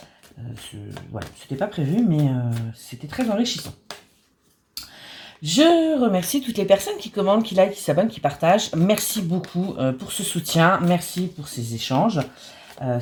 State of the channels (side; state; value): both; identical; correlation 1.00